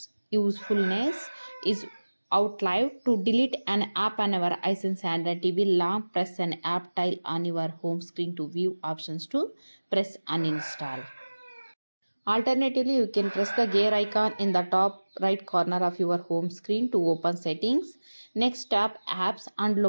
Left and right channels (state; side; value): inverted; both; correlation -1.00